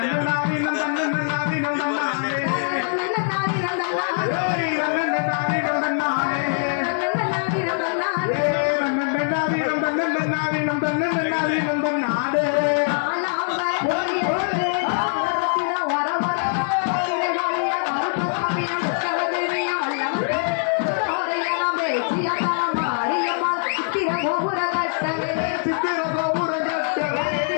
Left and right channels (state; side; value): silent; right; 64 dB below the other